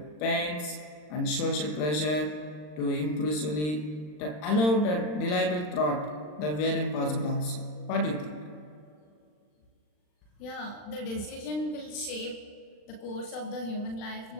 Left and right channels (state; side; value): late; right; 40 ms